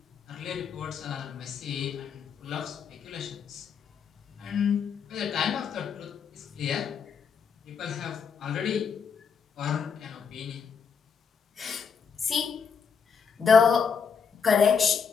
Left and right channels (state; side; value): quieter; right; 6.3 dB